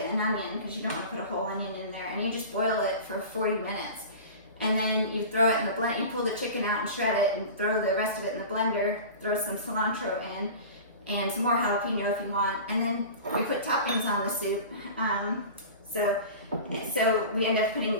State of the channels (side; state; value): both; inverted; correlation -0.35